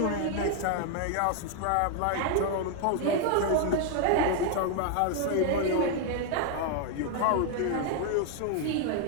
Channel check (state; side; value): different; both; correlation 0.00